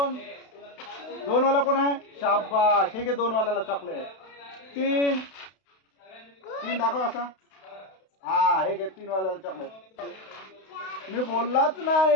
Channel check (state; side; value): late; right; 32 ms